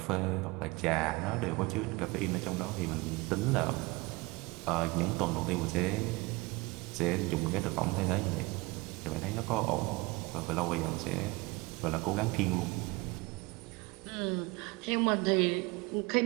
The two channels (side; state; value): left; quieter; 24.2 dB